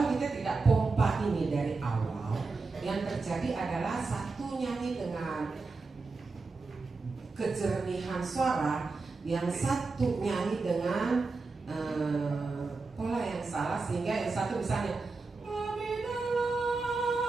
kita tidak pompa ini dari awal, yang terjadi adalah satu nyanyi dengan kejernihan suara, yang satu nyanyi dengan pola yang salah, sehingga yang satu misalnya lebih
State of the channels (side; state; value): left; quieter; 4.0 dB